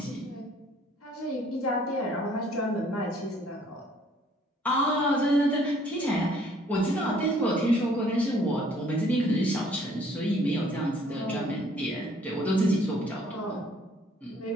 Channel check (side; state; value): both; normal; correlation 0.60